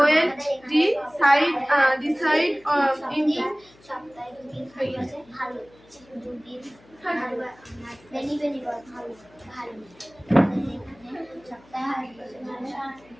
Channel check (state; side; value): noise; left; hum, 27 dB below the sound